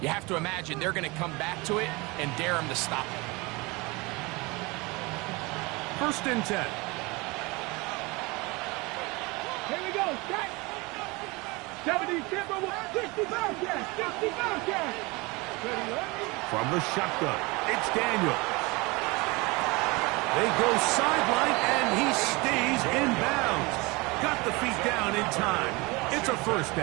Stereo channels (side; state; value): left; quieter; 25.0 dB